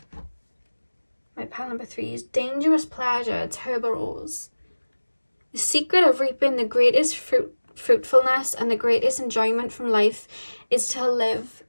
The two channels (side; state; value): both; inverted; correlation -1.00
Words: My pal number 3 is dangerous pleasure, tuberose. The secret of reaping the greatest fruitfulness and the greatest enjoyment from life is to live